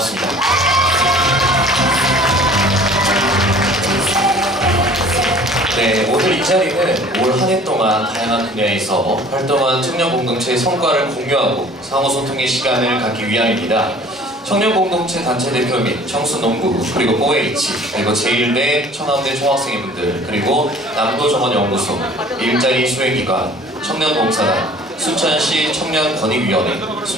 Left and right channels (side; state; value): both; normal; correlation 0.49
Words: 네, 오늘 이 자리는 올 한 해 동안 다양한 분야에서 활동한 청년 공동체의 성과를 공유하고 상호소통의 시간을 갖기 위함입니다. 청년 공동체 단체 대표 및 청순농구, 그리고 OH, 그리고 제1대 천안대 총학생회분들, 그리고 남도정원연구소, 일자리 수행기관, 청년봉사단, 순천시 청년권익위원회,